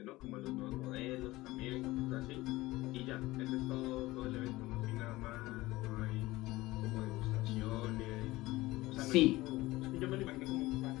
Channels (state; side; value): quieter; right; 19.0 dB